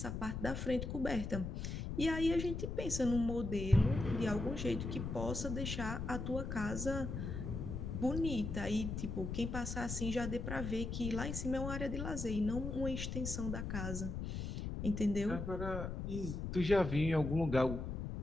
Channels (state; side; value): noise; left; rumble, 4 dB below the sound